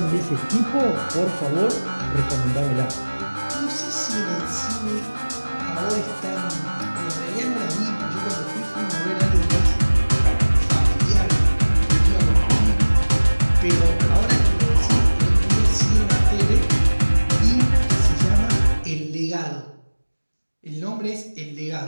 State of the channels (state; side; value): inverted; both; correlation -1.00